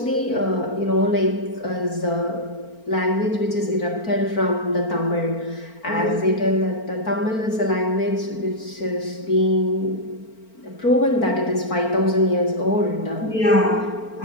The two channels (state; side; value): late; right; 4.4 ms